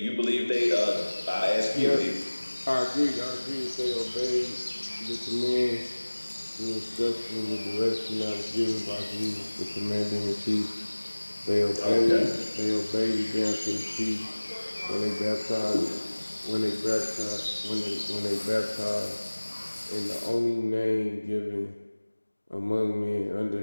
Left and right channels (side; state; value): both; inverted; correlation -1.00